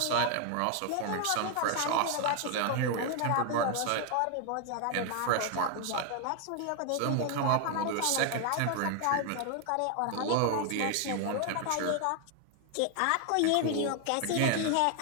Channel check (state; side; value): different; both; correlation 0.00